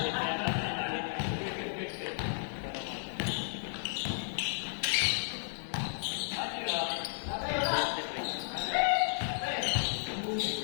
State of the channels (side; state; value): right; silent; digital silence